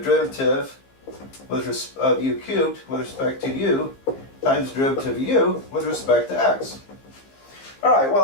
of u cubed with respect to u times derivative of u with respect to x. All right,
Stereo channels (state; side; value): late; right; 15 ms